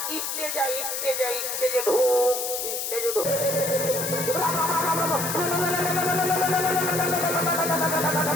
স্টেজে আয়, স্টেজে আয়, স্টেজে ঢুক, স্টেজে ঢুক।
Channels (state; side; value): noise; left; hiss, 3 dB below the sound